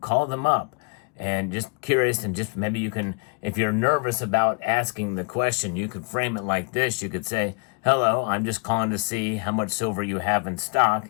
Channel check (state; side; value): quieter; right; 33.0 dB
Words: them up. And just curious, and just maybe you can, if you're nervous about asking the question, you could frame it like this. You could say, hello, I'm just calling to see how much silver you have in stock